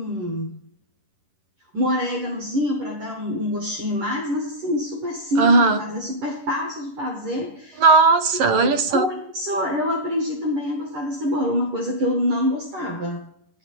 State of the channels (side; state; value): left; late; 11 ms